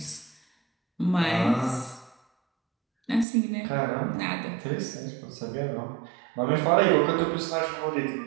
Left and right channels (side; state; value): left; drops out; at 3.2 s